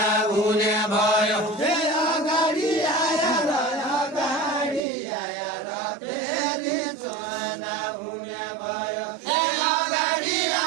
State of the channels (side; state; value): left; drops out; at 4.8 s